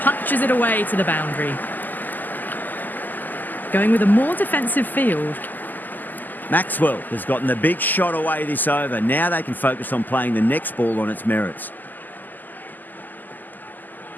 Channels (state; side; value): late; right; 0.086 ms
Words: punches it away to the boundary. Going with a more defensive field. Maxwell has gotten the big shot away this over. Now they can focus on playing the next ball on its merits.